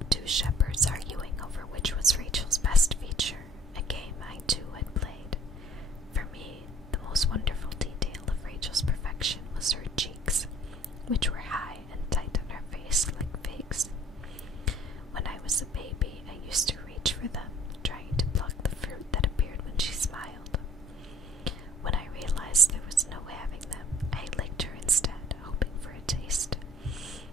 two shepherds arguing over which was Rachel's best feature, a game I too had played. For me, the most wonderful detail of Rachel's perfection was her cheeks, which were high and tight on her face like figs. When I was a baby, I used to reach for them, trying to pluck the fruit that appeared when she smiled. When I realized there was no having them, I licked her instead, hoping for a taste.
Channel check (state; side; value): normal; both; correlation 0.55